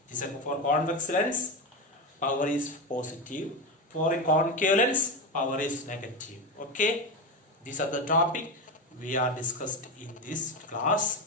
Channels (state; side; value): normal; both; correlation 0.17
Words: for convex lens, power is positive. For a concave lens, power is negative. Okay, these are the topic we are discussed in this